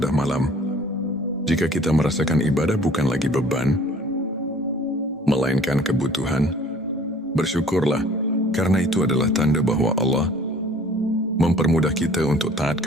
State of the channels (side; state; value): both; normal; correlation 0.52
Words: malam. Jika kita merasakan ibadah bukan lagi beban, melainkan kebutuhan, bersyukurlah, karena itu adalah tanda bahwa Allah mempermudah kita untuk taat